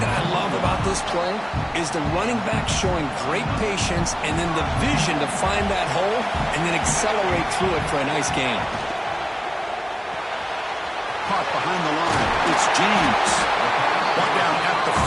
that I love about this play is the running back showing great patience and then the vision to find that hole and then accelerate through it for a nice gain. Caught behind the line. It's James. Brought down at the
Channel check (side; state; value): both; identical; correlation 1.00